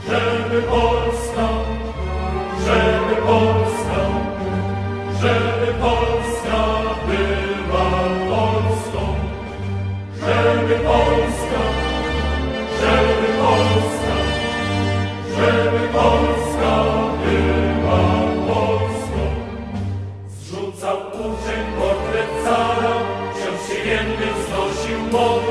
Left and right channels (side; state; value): both; identical; correlation 1.00